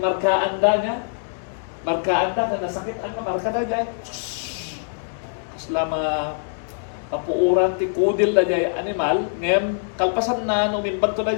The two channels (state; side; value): silent; right; digital silence